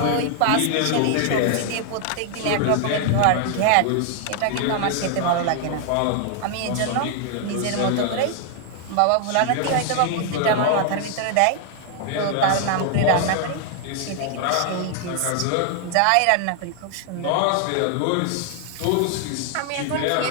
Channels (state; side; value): different; both; correlation 0.00